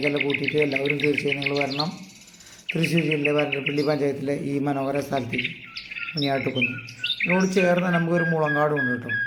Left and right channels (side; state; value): both; identical; correlation 1.00